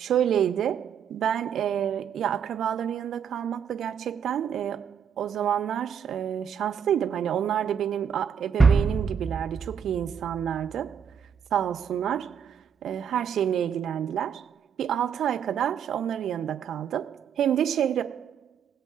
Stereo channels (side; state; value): left; quieter; 7.8 dB